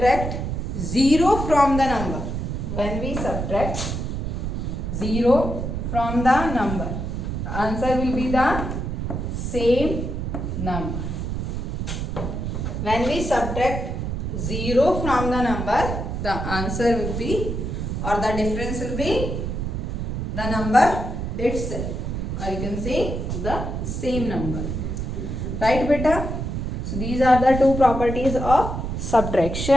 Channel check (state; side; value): noise; right; rumble, 3 dB below the sound